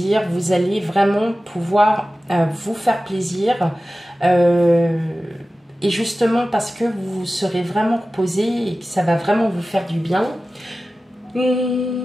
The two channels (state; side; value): normal; both; correlation 0.95